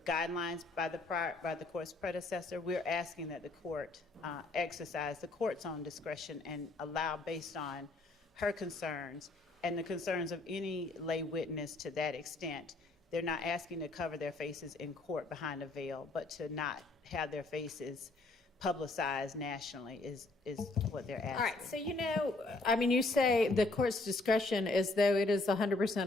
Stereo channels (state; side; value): quieter; right; 3.1 dB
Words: guidelines by the court's predecessor, we're asking that the court exercise the court's own discretion and allow, based on her concerns and the concerns of any lay witness to that extent. They're not asking to cover their faces in court behind a veil, but to not have their faces publicized nationally is what they're asking. All right, so you say the court's discretion as though it is